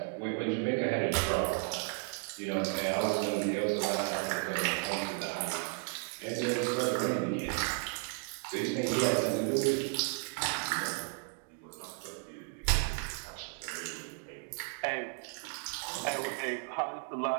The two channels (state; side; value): quieter; left; 39.5 dB